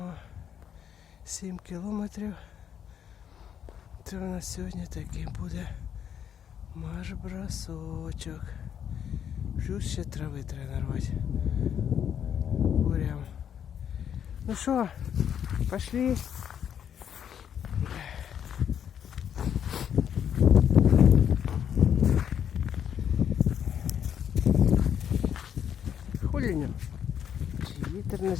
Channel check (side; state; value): right; quieter; 8.8 dB